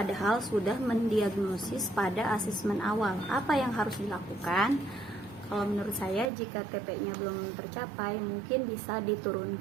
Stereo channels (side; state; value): left; drops out; at 6.3 s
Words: sudah mendiagnosis pada asesmen awal. Apa yang harus dilakukan? Kalau menurut saya, jika TP-nya belum tercapai, mungkin bisa